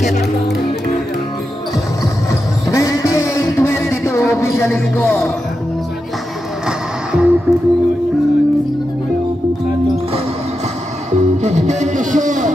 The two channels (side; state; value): both; normal; correlation 0.88